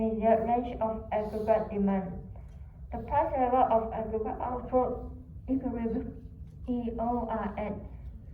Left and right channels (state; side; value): identical; both; correlation 1.00